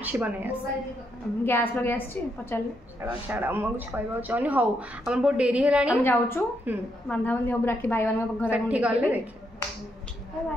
ବନେଇ ଆସେ ଗ୍ୟାସ୍ ଲଗେଇ ଆସିଛି ପଚାରିଲେ ଛାଡ଼ ମୁଁ କିଛି କହିବାକୁ ଚାହୁଁନି ହଉ ଆମର ବହୁତ ଡେରି ହେଲାଣି ଆମେ ଯାଉଛୁ ବାନ୍ଧାବାନ୍ଧି ହବୁ ରାକ୍ଷୀ ଭାଇମାନଙ୍କ ଘରେ ଠିକ୍ ଗଲେ ଦେଖ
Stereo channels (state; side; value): normal; both; correlation 0.78